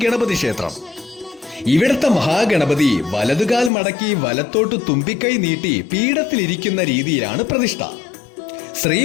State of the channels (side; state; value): right; drops out; at 3.7 s